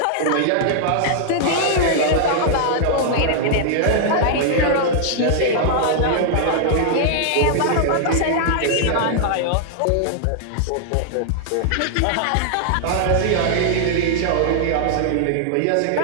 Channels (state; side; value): different; both; correlation -0.01